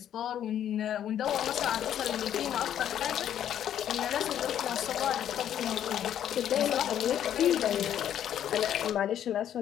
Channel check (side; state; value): right; quieter; 10.3 dB